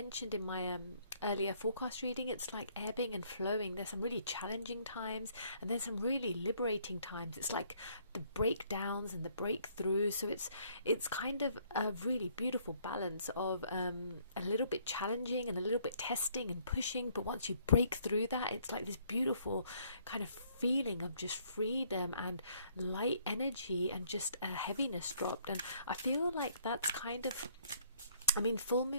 in my earlier forecast reading. It's like ebbing and flowing. There's some really challenging times, and then some really liberating times. It's like the breakdowns and the breakthroughs. So it's kind of a really beautiful balance of a little bit challenging and a little bit testing and pushing. But once you break through that, it's like this beautiful kind of feeling of just freedom and light energy and just a heaviness dropped. And I feel like that's kind of, I mean, full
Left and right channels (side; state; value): both; inverted; correlation -0.65